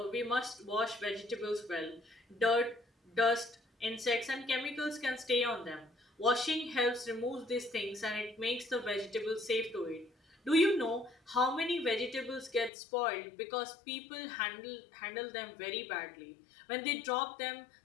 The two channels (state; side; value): drops out; right; at 12.7 s